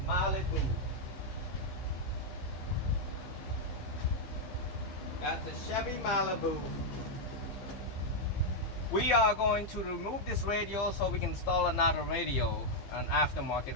Malibu. That's a Chevy Malibu. We are going to remove this radio so we can install another radio, an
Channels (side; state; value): right; late; 15 ms